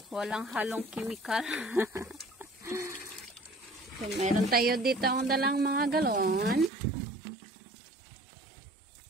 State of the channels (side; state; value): left; drops out; at 6.7 s